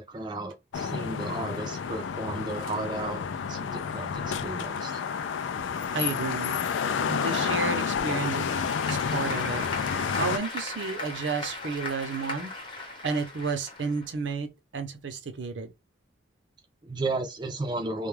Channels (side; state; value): both; normal; correlation 0.13